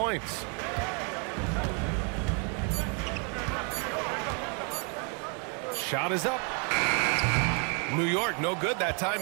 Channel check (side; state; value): left; quieter; 37.6 dB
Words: Shot is up. New York, no good that time